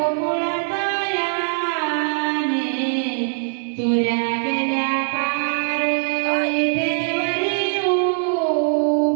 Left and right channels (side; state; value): left; silent; digital silence